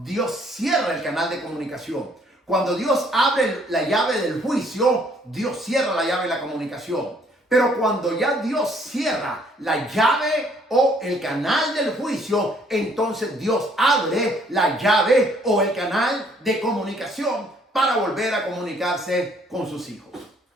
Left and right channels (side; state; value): both; normal; correlation 0.63